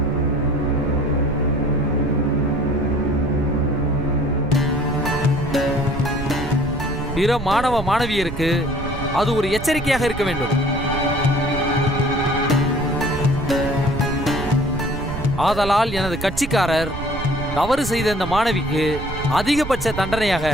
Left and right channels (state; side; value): noise; right; rumble, 8 dB below the sound